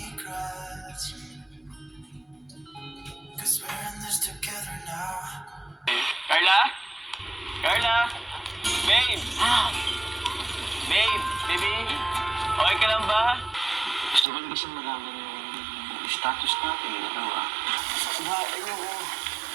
Cause we're in this together now. Carla? Carla? Babe! Babe! Baby? Okay ka lang ba? Gusto ko lang kasi malaman yung status natin, dalawa. Ayoko.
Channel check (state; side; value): drops out; left; at 14.2 s